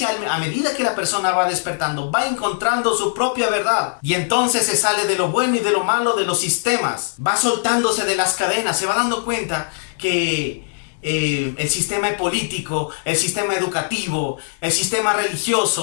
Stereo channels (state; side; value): silent; right; 64 dB below the other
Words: a medida que la persona va despertando, va encontrando su propia verdad. Y entonces se sale de lo bueno y de lo malo de los sistemas. Va soltándose de las cadenas. Se va dando cuenta que el sistema político, el sistema educativo, el sistema